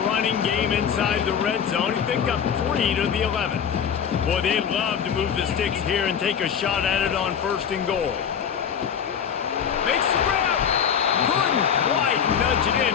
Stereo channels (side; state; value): right; quieter; 7.8 dB